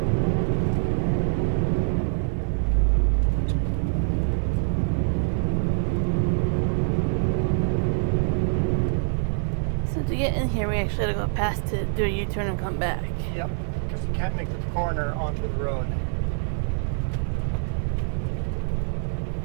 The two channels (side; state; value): left; silent; 62 dB below the other